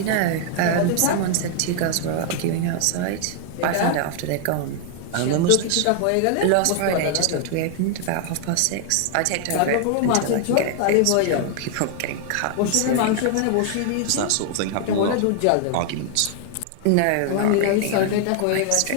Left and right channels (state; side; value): different; both; correlation 0.00